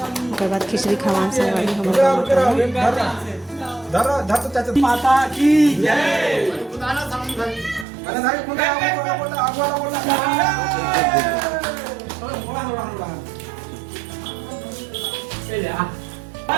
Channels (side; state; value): left; drops out; at 7.9 s